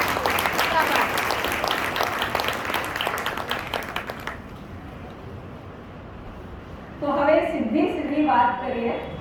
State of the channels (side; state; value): both; identical; correlation 1.00